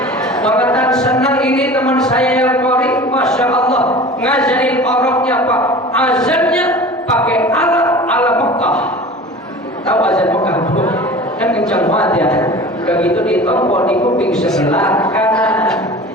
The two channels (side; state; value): both; normal; correlation 0.39